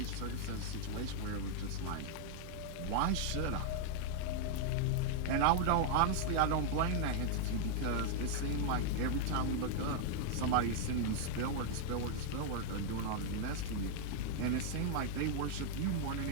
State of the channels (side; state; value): both; different; correlation 0.00